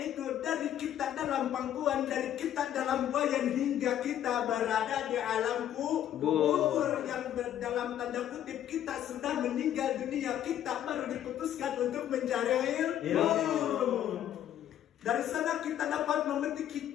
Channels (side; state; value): right; quieter; 11.1 dB